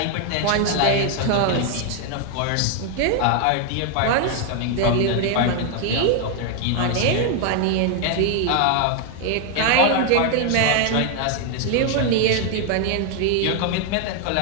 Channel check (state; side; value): different; both; correlation 0.00